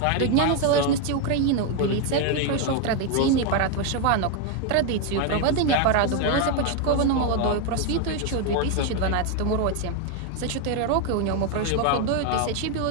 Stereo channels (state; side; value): different; both; correlation 0.01